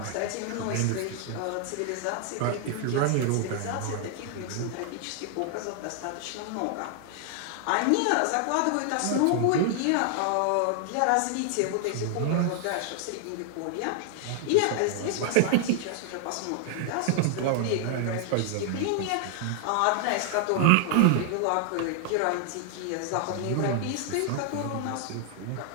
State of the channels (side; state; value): both; different; correlation 0.00